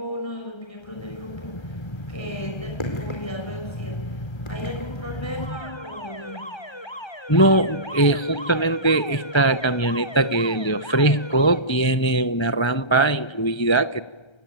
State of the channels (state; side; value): late; right; 1.3 ms